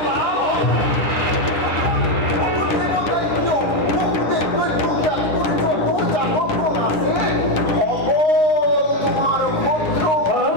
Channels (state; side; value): late; right; 9.9 ms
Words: দেবতাই কিয় বহুদে দৈত্যক যত জাগৰণ আছে হ'ব তোমাৰ পুত্ৰ।